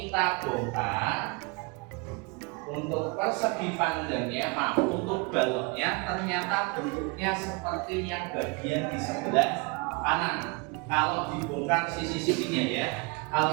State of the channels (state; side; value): quieter; left; 29.3 dB